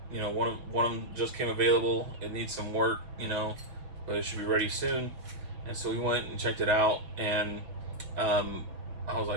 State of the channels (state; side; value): late; left; 6.4 ms